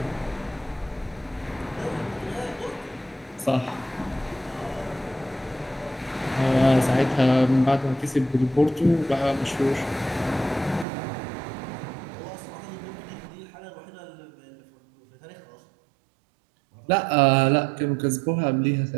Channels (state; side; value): drops out; left; at 10.9 s